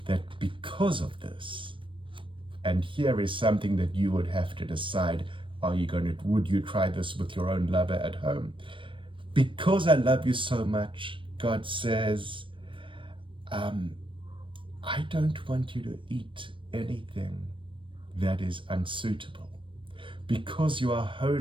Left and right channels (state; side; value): late; left; 0.25 ms